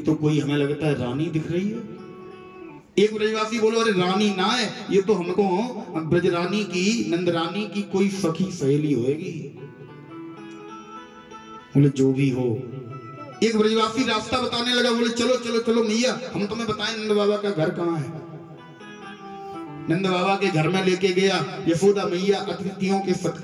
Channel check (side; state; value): both; identical; correlation 1.00